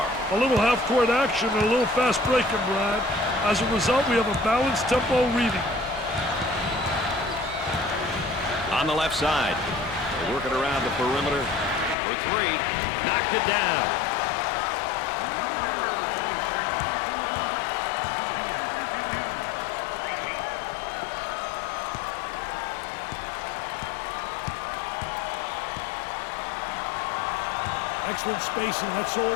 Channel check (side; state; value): right; drops out; at 12.0 s